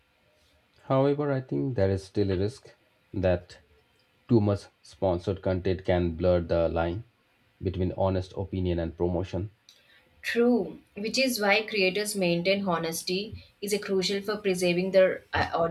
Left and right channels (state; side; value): identical; both; correlation 1.00